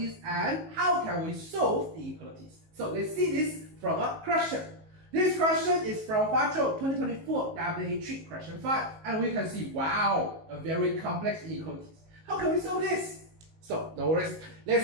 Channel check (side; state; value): left; late; 19 ms